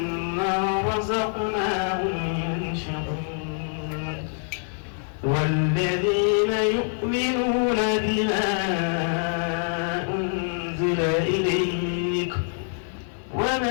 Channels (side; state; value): right; silent; 56 dB below the other